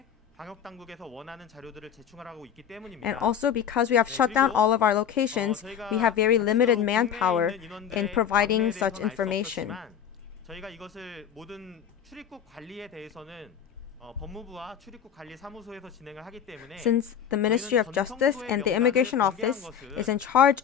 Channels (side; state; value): right; quieter; 8.5 dB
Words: 방역 당국에서 원하는 자료들을 제출하고 있기 때문입니다. And also because we have shut down all of our locations, we have very limited manpower in providing such information. 저희가 이것을 모든 출입국 관리에 대해서는 법무부와 출입국 관리 사무소에서 진행을 하기 때문에 Since the Ministry of Justice and the Immigration Office is in charge